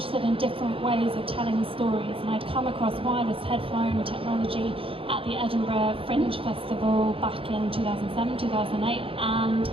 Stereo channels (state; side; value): late; left; 0.26 ms